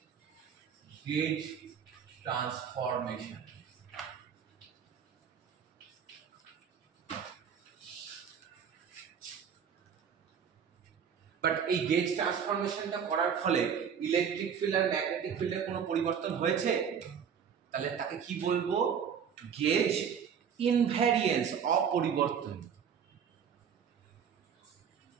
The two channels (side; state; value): left; quieter; 7.5 dB